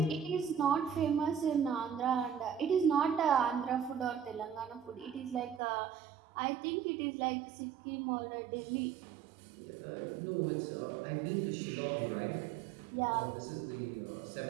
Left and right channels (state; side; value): drops out; left; at 5.6 s